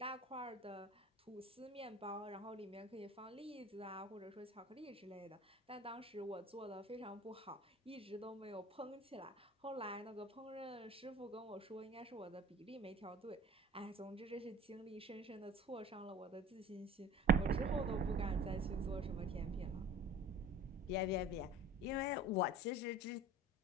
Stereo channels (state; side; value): normal; both; correlation 0.43